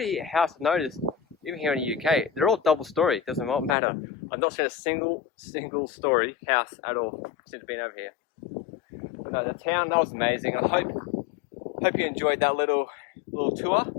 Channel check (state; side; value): drops out; right; at 3.8 s